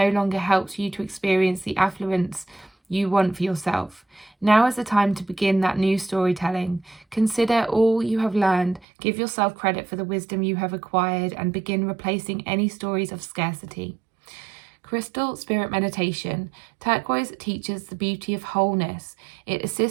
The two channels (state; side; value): drops out; left; at 8.8 s